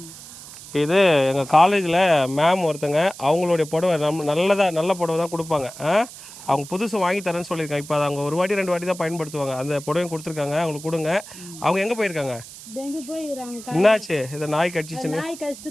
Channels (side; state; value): right; noise; hiss, 15 dB below the sound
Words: இது எங்கள் காலேஜில் மேம் ஒருத்தங்க, அவங்களுடைய புடவை நல்ல புடவை தான் கொடுப்பாங்க. அவங்க புதுசு வாங்கி தரேன்னு சொல்லியிருக்காங்க. இப்போ அதை அவங்க ஒரு வாட்டி 2 வாட்டி தான் பயன்படுத்துவாங்க. அந்த புடவையும் கொடுத்துருக்காங்க, அவங்களுக்கு கொடுங்க. அவங்க எங்கே போயிருக்காங்க? என்னாச்சு? இதை நாய் கடிச்சிச்சுன்னு